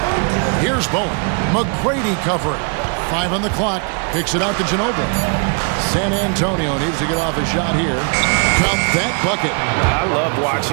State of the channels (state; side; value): quieter; left; 38.4 dB